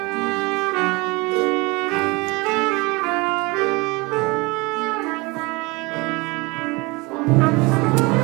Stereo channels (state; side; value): quieter; left; 25.5 dB